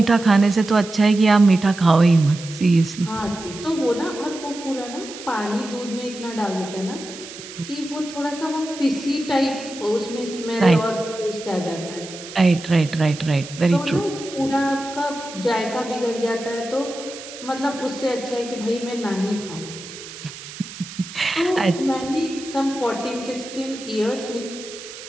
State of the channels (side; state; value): right; noise; hiss, 14 dB below the sound